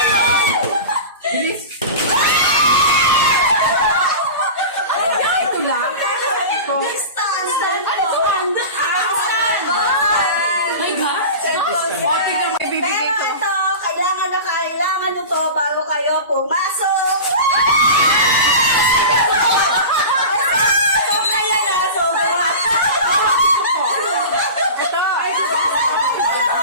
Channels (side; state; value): both; inverted; correlation -0.31